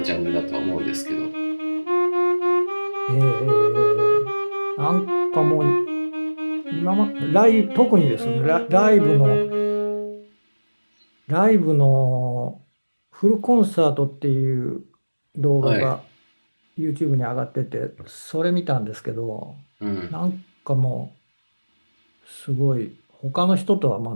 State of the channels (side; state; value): both; inverted; correlation -1.00